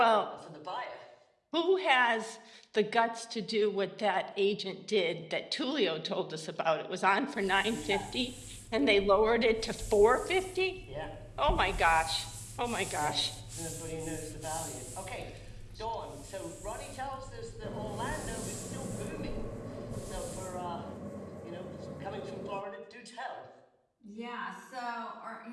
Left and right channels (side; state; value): both; identical; correlation 1.00